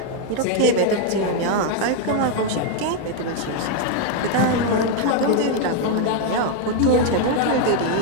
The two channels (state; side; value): different; both; correlation 0.00